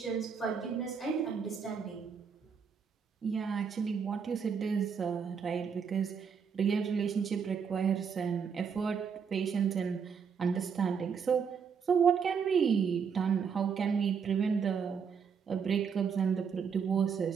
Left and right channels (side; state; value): left; quieter; 6.5 dB